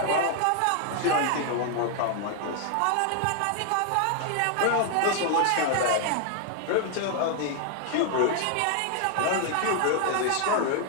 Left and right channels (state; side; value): different; both; correlation 0.00